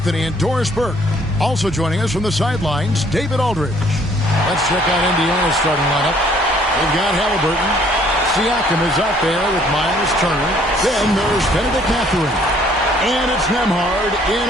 and Doris Burke. Also joining us from the sidelines, David Aldridge. Let's check out Indiana's starting lineup. They've got Halliburton. Siakam is out there with Miles Turner. Then there's Benedict Mathurin. And it's Nembhard in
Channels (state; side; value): normal; both; correlation 0.61